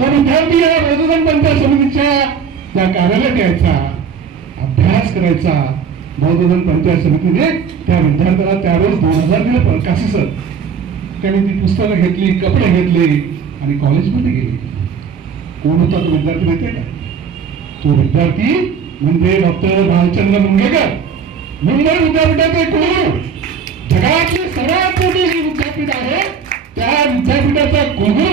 विद्यार्थी या बौद्धधन पंचायत समितीच्या त्या कार्यालयात यायचा, अभ्यास करायचा. बौद्धधन पंचायत समितीने त्या विद्यार्थ्याला त्यावेळेस 2000 दिले प्रकाशी सर. त्याने ती पुस्तकं घेतली, कपडे घेतले आणि कॉलेजमध्ये गेले. कोण होता तो विद्यार्थी माहितीये का? तो विद्यार्थी म्हणजे डॉक्टर भालचंद्र मुंगेकर, मुंबई विद्यापीठाचे कुलगुरू. जगातले सर्वात मोठे विद्यापीठ आहे, त्या विद्यापीठाचा कुलगुरू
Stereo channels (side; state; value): left; quieter; 6.4 dB